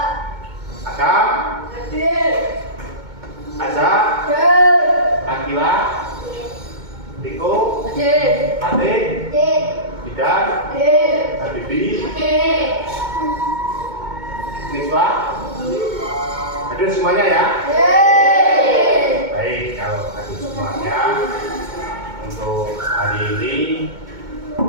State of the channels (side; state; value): left; late; 2.2 ms